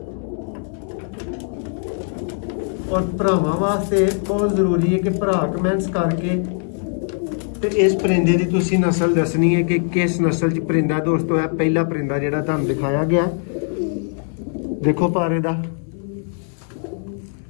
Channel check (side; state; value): right; silent; 55 dB below the other